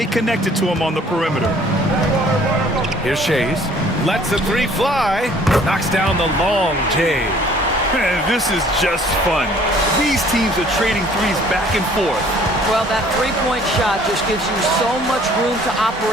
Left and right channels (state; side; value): normal; both; correlation 0.56